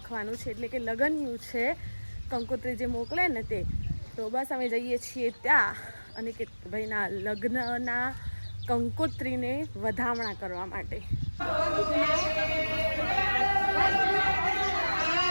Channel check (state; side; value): inverted; both; correlation -1.00